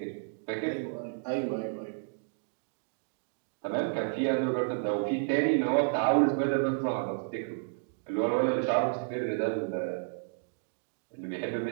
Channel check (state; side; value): silent; left; digital silence